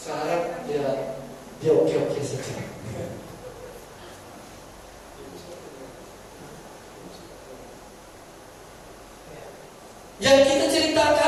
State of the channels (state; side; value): identical; both; correlation 1.00